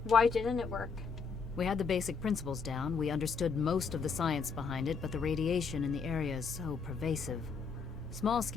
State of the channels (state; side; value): quieter; right; 5.3 dB